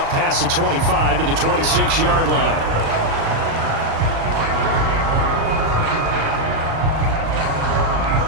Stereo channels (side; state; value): left; late; 36 ms